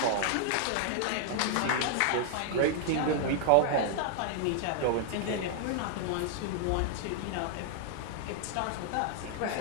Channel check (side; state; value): both; different; correlation -0.01